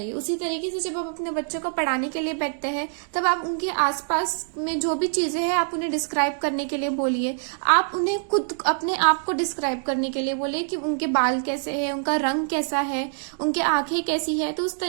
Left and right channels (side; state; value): left; silent; digital silence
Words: है। उसी तरीके से जब आप अपने बच्चों को पढ़ाने के लिए बैठते हैं तब आप उनके आसपास में जो भी चीजें हैं आप उन्हें डिस्क्राइब करने के लिए बोलिए। आप उन्हें खुद अपने आप को डिस्क्राइब करने के लिए बोलिए कि उनके बाल कैसे है, उनका रंग कैसा है, उनके आंखें कैसी है। तो उस